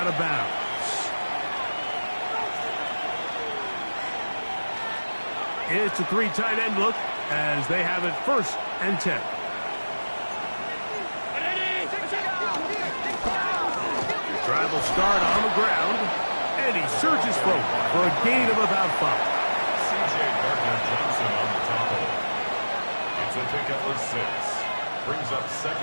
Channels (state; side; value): inverted; both; correlation -1.00